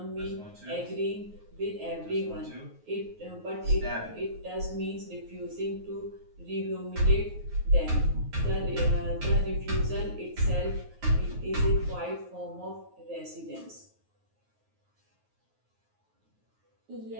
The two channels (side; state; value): left; late; 9.4 ms